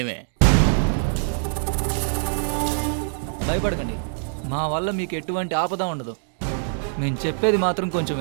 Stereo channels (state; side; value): silent; left; digital silence